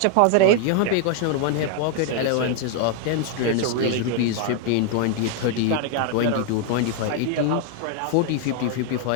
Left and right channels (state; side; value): different; both; correlation 0.00